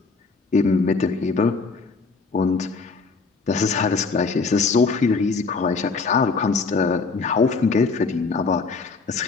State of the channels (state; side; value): quieter; right; 4.3 dB